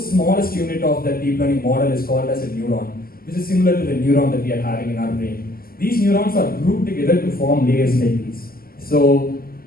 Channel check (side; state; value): right; late; 0.43 ms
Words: smallest unit of the deep learning model is called as a neuron, which is similar to the neuron that we are having in our brain. These neurons are grouped together to form layers like these. So